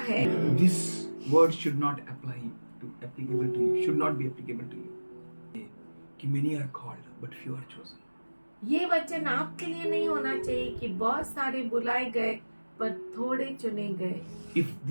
है। This word should not applicable to you, should not be applicable to you. कि many are called, but few are chosen. ये वचन आपके लिए नहीं होना चाहिए कि बहुत सारे बुलाए गए पर थोड़े चुने गए। If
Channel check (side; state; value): both; inverted; correlation -1.00